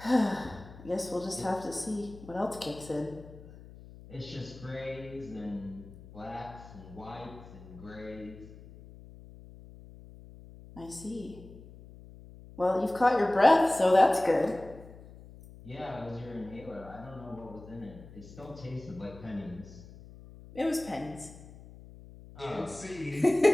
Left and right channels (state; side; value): noise; left; hum, 18 dB below the sound